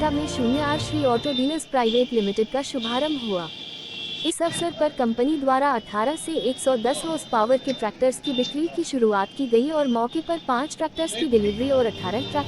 में 0 Shri auto dealers private limited का शुभारंभ हुआ। इस अवसर पर कंपनी द्वारा 18 से 110 हॉर्स पावर के ट्रैक्टर्स की बिक्री की शुरुआत की गई और मौके पर 5 ट्रैक्टर्स की डिलीवरी और 18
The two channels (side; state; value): both; identical; correlation 1.00